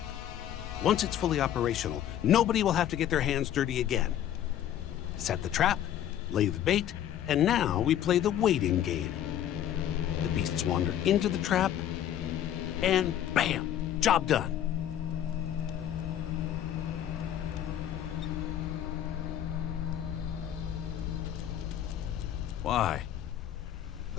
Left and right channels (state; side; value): quieter; right; 10.9 dB